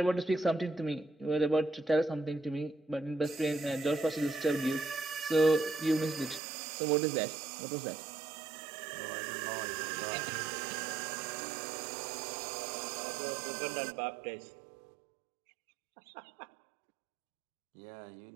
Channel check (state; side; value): drops out; left; at 6.4 s